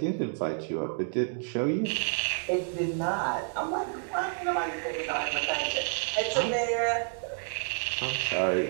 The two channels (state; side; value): silent; left; 58 dB below the other